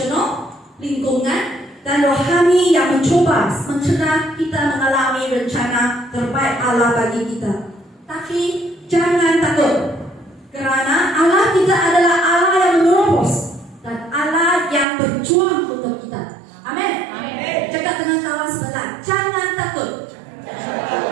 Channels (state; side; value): drops out; left; at 14.9 s